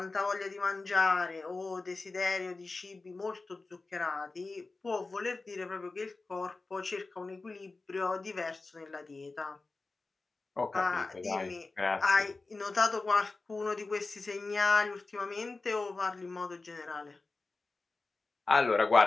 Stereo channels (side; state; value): right; quieter; 3.6 dB